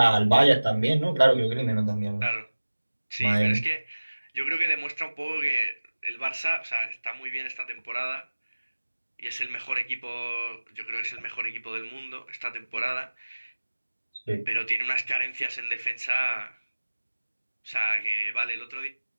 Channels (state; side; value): inverted; both; correlation -1.00